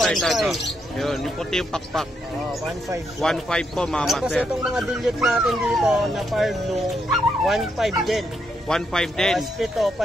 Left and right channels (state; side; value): normal; both; correlation 0.79